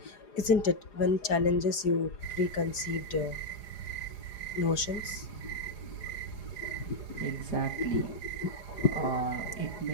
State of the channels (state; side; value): late; right; 4.9 ms